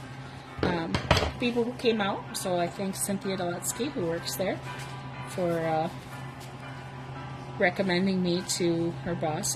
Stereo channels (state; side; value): identical; both; correlation 1.00